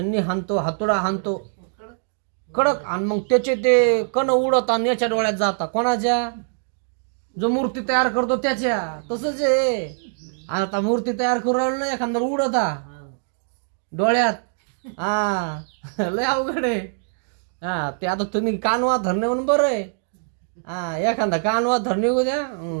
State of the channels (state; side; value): silent; left; digital silence